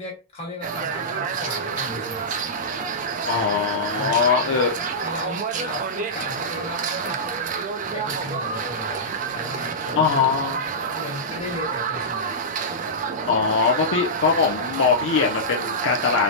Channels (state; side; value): normal; both; correlation -0.13